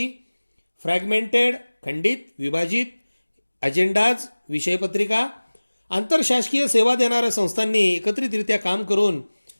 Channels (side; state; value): both; inverted; correlation -1.00